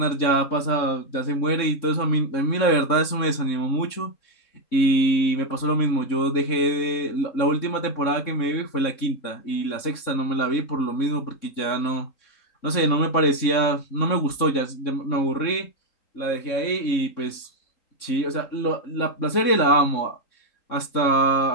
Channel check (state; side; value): late; right; 3.6 ms